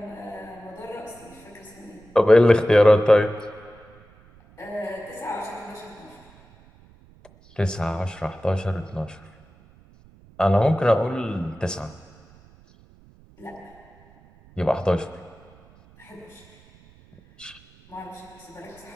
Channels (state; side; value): noise; right; rumble, 27 dB below the sound